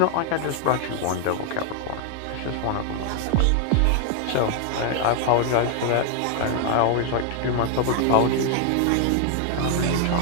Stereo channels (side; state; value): both; different; correlation 0.00